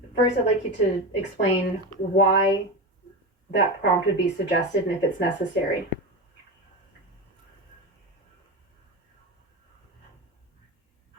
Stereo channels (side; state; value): both; normal; correlation 0.20